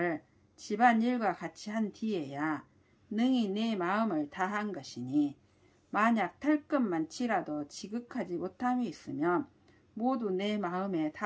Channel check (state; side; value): identical; both; correlation 1.00